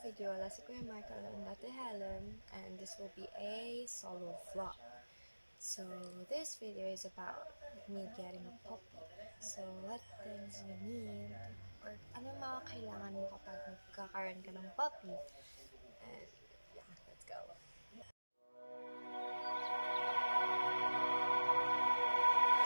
let's go Michael and Ate Helen, and this will be a solo vlog. So this video is about me getting a puppy. So what things you need, or ano mga kailangan mo kapag magkakaroon ka ng puppy. And yeah, let's go.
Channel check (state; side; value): inverted; both; correlation -1.00